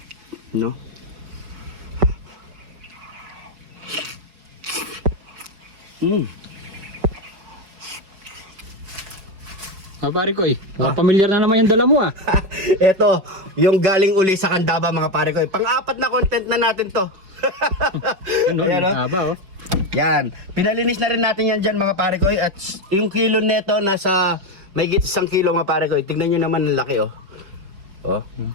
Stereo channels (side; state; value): left; late; 5.4 ms